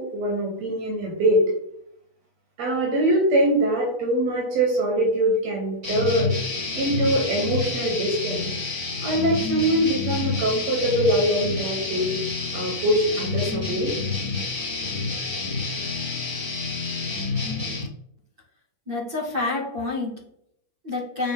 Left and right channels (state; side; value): late; left; 8.4 ms